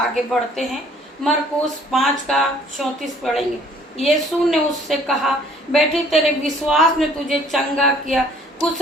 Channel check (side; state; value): both; normal; correlation 0.58